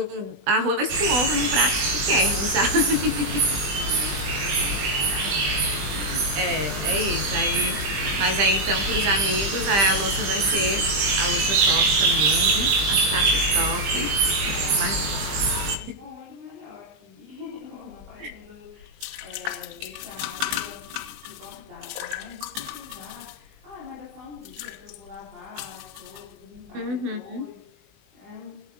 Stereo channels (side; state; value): left; late; 20 ms